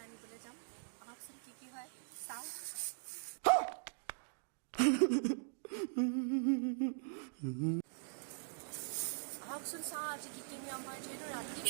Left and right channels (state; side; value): silent; left; digital silence